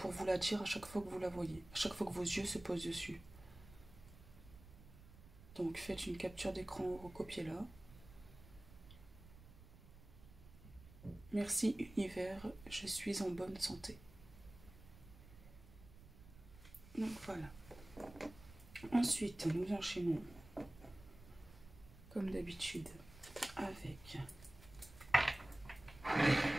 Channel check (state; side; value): noise; right; rumble, 19 dB below the sound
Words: vous la dire à chaque fois que vous la voyez, à chaque fois que vos yeux se posent dessus. Donc faites une capture d'écran ou recopiez-la. Merci univers, je suis en bonne santé. Donc voilà. Ensuite, nous enchaînons comme d'habitude avec